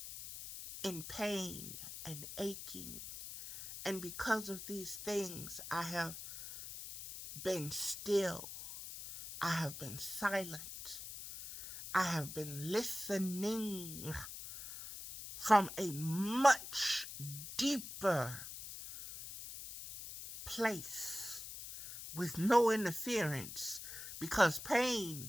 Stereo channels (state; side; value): noise; left; hiss, 10 dB below the sound